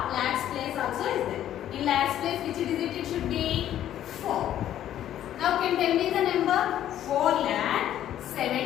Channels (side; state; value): right; quieter; 11.6 dB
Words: lakhs place also is there. In lakhs place which digit it should be? 4. Now can tell me the number?